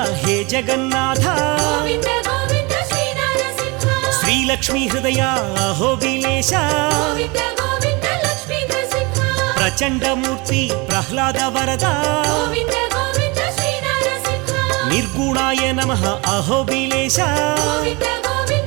హే జగన్నాథ గోవింద గోవింద శ్రీ నరసింహ శ్రీలక్ష్మీ హృదయ అహోబిలేశ గోవింద గోవింద లక్ష్మీ నరసింహ ప్రచండమూర్తి ప్రహ్లాద వరద గోవింద గోవింద శ్రీ నరసింహ నిర్గుణాయ నమః అహోబిలేశ గోవింద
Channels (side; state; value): left; quieter; 26.8 dB